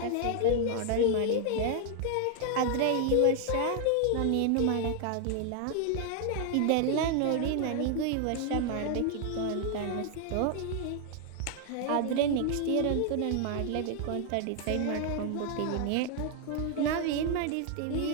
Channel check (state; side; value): different; both; correlation 0.00